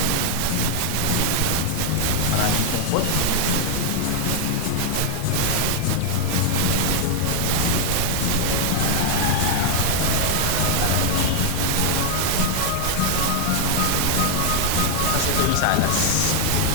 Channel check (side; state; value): both; different; correlation 0.00